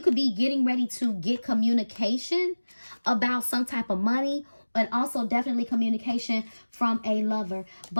could be getting ready to get communication about some type of money, and also definitely communication from a lover.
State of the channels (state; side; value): inverted; both; correlation -1.00